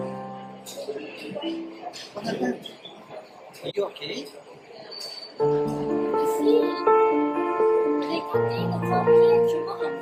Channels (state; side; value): identical; both; correlation 1.00